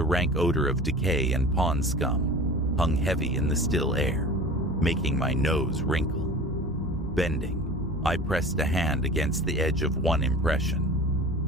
rank odor of decay and pond scum hung heavy in the still air, making my nose wrinkle. Bending, I pressed a hand against the edge of one impression.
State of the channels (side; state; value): both; normal; correlation 0.38